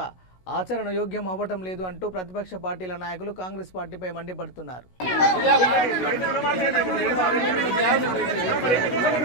ఆచరణ యోగ్యం అవ్వటం లేదు అంటూ ప్రతిపక్ష పార్టీల నాయకులు కాంగ్రెస్ పార్టీపై మండిపడుతున్నారు.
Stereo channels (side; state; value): right; late; 16 ms